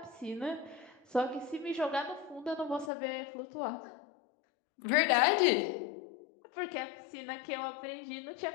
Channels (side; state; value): right; drops out; at 2.9 s